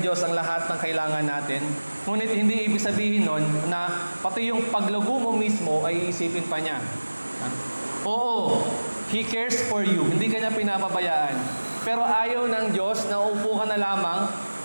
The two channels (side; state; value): both; inverted; correlation -1.00